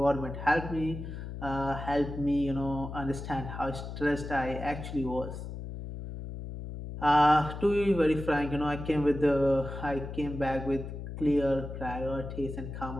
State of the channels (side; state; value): left; noise; hum, 8 dB below the sound